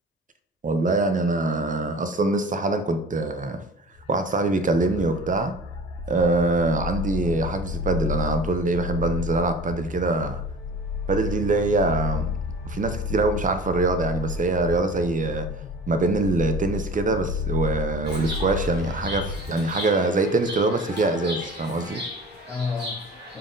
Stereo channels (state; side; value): normal; both; correlation 0.41